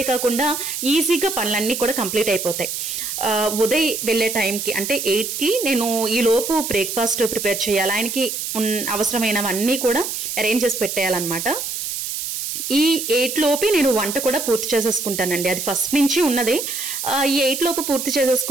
ఈజీగా పనులన్నీ కూడా కంప్లీట్ అయిపోతాయి. ఉదయ్ వెళ్ళే టైంకి అంటే 8కి నేను ఈ లోపు బ్రేక్ఫాస్ట్ ప్రిపేర్ చేయాలి. ఆయనకి అవసరమైనవన్నీ కూడా అరేంజ్ చేసి పెట్టేయాలన్నమాట. ఈ 8 లోపే నేను వంట కూడా పూర్తి చేసేసుకుంటానండి, అది ఫస్ట్ నుంచి ఉన్నదే. ఈ 8 లోపు పూర్తి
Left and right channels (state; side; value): noise; right; hiss, 4 dB below the sound